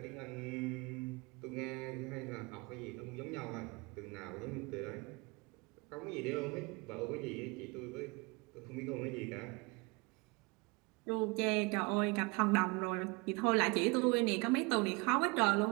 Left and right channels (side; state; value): left; quieter; 27.3 dB